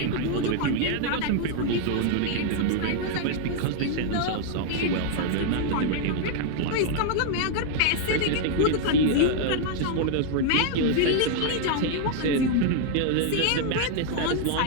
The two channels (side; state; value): both; different; correlation 0.00